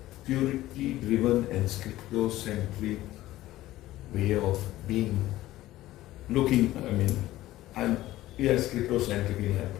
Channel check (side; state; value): right; quieter; 15.7 dB